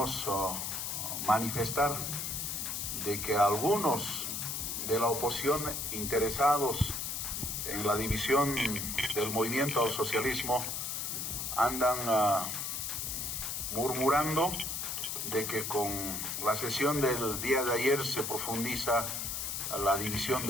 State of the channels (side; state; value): left; noise; hiss, 3 dB below the sound